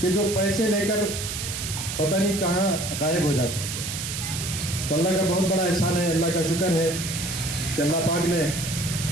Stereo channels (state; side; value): noise; right; hiss, 5 dB below the sound